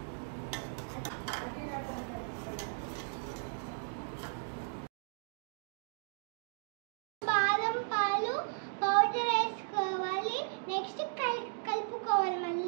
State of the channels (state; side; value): silent; left; digital silence